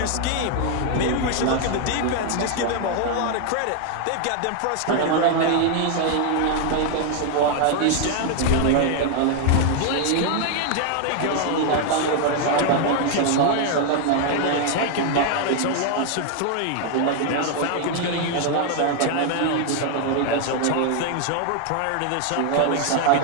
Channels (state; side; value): different; both; correlation 0.00